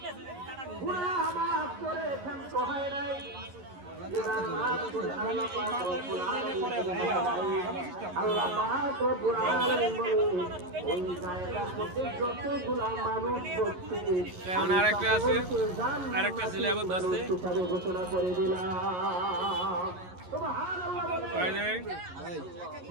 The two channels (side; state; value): left; late; 11 ms